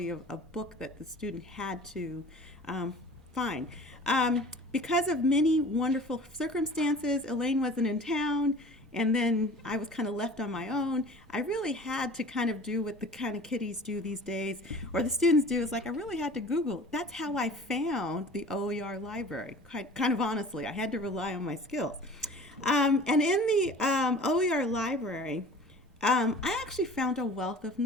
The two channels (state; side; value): normal; both; correlation 0.44